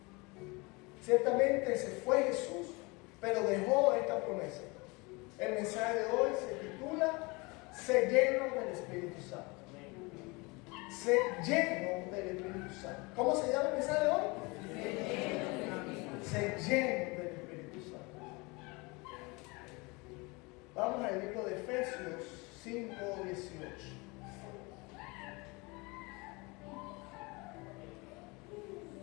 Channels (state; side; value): quieter; right; 26.5 dB